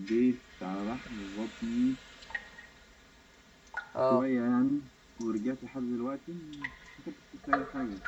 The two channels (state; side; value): identical; both; correlation 1.00